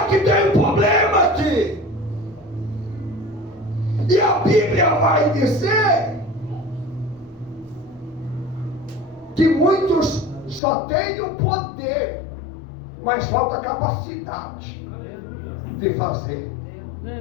que tem um problema aqui. E a Bíblia vai dizer que muitos só têm o poder, mas falta capacidade de fazer.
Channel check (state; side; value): drops out; right; at 10.6 s